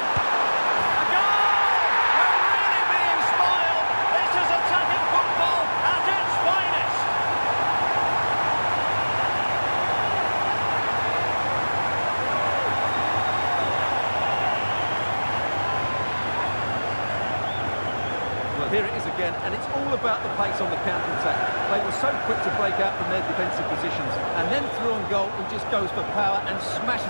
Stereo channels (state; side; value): inverted; both; correlation -1.00